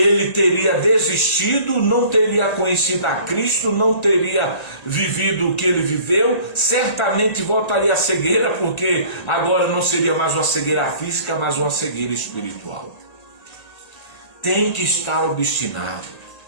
teria desistido, não teria conhecido a Cristo, não teria vivido o que ele viveu, certamente voltaria à cegueira, porque agora não seria mais uma cegueira física, mas uma cegueira espiritual. Tem que estar obstinado.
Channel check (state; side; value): late; right; 1.9 ms